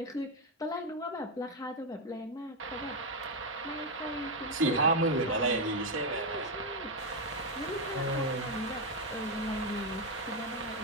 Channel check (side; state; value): both; normal; correlation 0.05